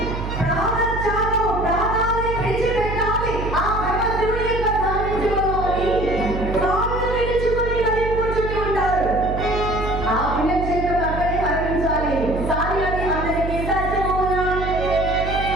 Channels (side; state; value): right; noise; hum, 5 dB below the sound